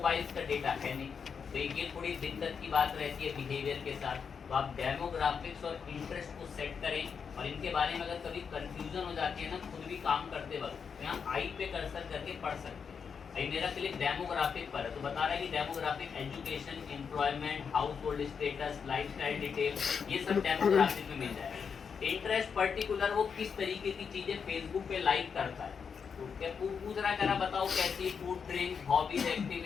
का डेटा है नहीं, तो ये थोड़ी दिक्कत की बात रहती है बिहेवियर के साथ। तो आप डेमोग्राफिक्स और इंटरेस्ट को सेट करें, और इनके बारे में अगर कभी कंफ्यूजन हो जाती है ना खुद भी काम करते वक्त, तो यहाँ आई पे कर्सर करके पढ़ सकते हैं। अभी मेरा क्लिक डेमोग्राफिक पर है तो बता रहा है कि demographic education, employment, house hold status, lifestyle detail, ये सब डेमोग्राफिक में मिल जाएगा। इंटरेस्ट पर्टिकुलर वो किस तरीके की चीजें फेसबुक पे लाइक करता है, तो क्या पूछ रहा करा बताओ कैसी food, drink, hobbies,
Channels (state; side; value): quieter; right; 6.3 dB